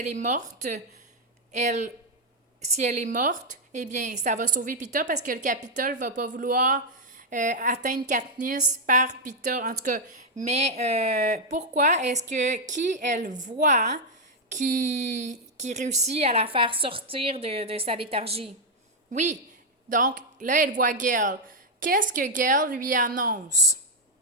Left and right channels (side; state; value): both; normal; correlation 0.00